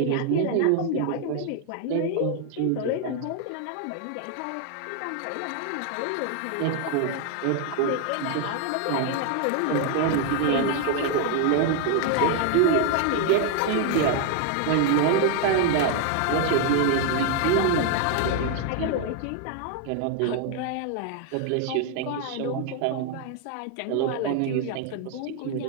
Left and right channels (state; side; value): different; both; correlation 0.00